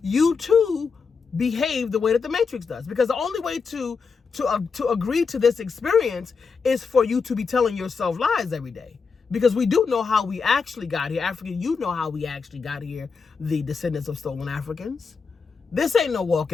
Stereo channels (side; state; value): right; quieter; 5.2 dB